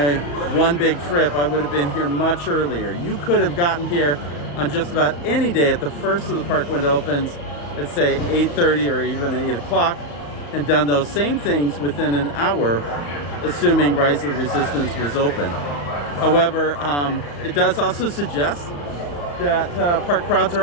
one big trip, I would have been here much earlier. You could have gotten here on just about any day at the first of the park when it opens, let's say 8:30 or even 8 o'clock, and done those same things within an hour, assuming Rise of the Resistance was open. However, it does also suggest that park crowds are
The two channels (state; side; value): late; right; 35 ms